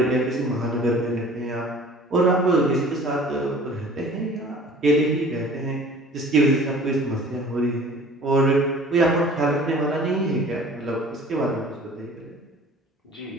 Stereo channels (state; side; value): normal; both; correlation 0.47